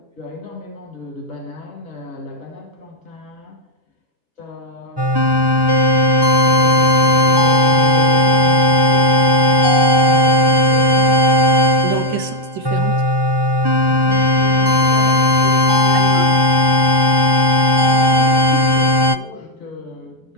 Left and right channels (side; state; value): left; late; 1.1 ms